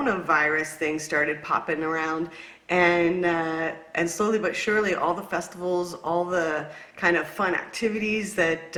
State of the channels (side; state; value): both; identical; correlation 1.00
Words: thing started popping around, and slowly but surely all the festivals, all the kind of fun activities that